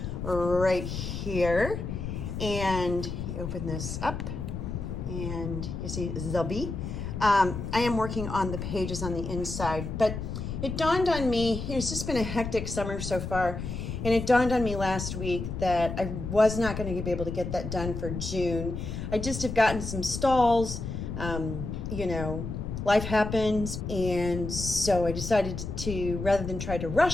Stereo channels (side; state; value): left; noise; rumble, 5 dB below the sound